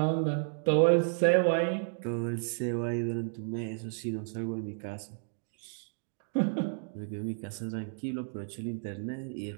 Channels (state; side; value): silent; left; digital silence